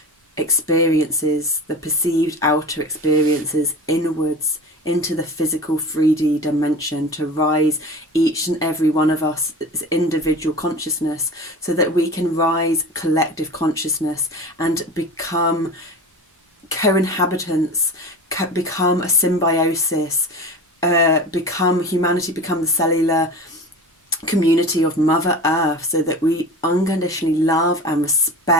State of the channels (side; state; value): both; normal; correlation 0.33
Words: experiences, the perceived outer experiences, inwards into the physical 3D dimension, to rise each and every one of us as individual consciousness, so that we can rise collective consciousness and become co-inhabitants, become a symbiosis, become humanity, become the cellular community of Mother Earth, so that we unconditionally love and